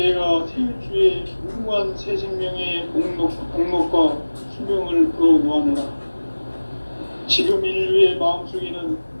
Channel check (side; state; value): both; inverted; correlation -1.00